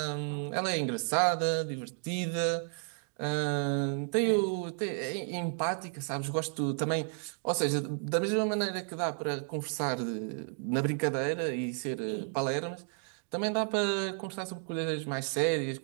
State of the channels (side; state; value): left; silent; 56 dB below the other